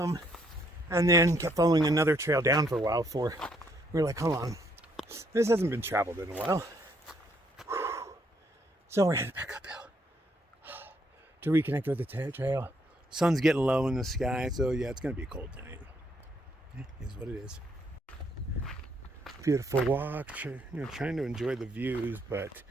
and then kept following another trail down for a while before we were like, hold on, this hasn't been traveled in a while. So we're headed back uphill to reconnect with the trail. Sun's getting low in the sky, so yeah, it's gonna be a cold night. It is what it is. Beautiful walk, trying to enjoy the views, but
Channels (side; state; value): both; normal; correlation 0.71